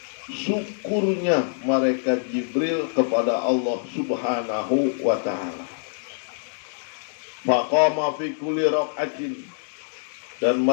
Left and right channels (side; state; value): right; silent; digital silence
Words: syukurnya malaikat Jibril kepada Allah Subhanahu wa Ta'ala. Faqama fi kulli rak'atin, dan